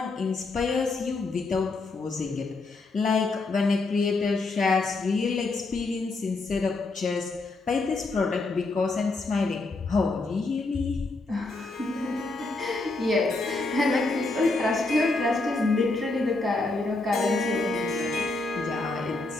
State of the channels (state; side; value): quieter; right; 3.4 dB